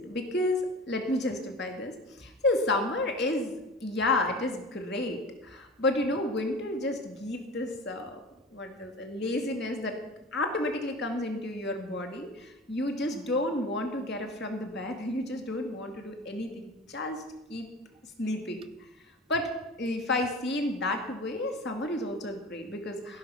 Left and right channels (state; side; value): normal; both; correlation 0.36